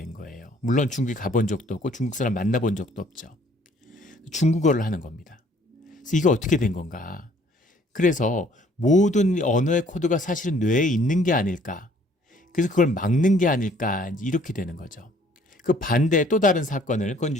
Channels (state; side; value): normal; both; correlation 0.59